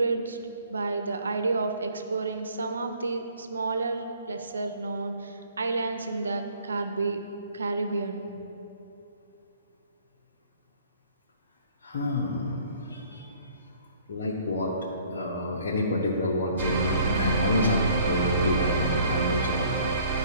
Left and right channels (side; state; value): both; inverted; correlation -0.57